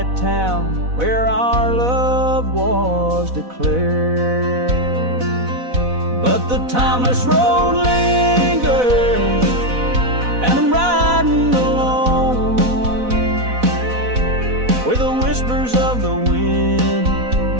town where our love was declared. But the timeless road lingers, and I'm riding alone, where the whispers of the wind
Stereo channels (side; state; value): left; late; 4.1 ms